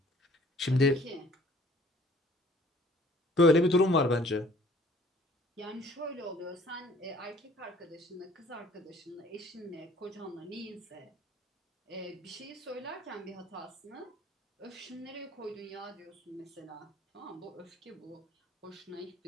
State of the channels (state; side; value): normal; both; correlation 0.55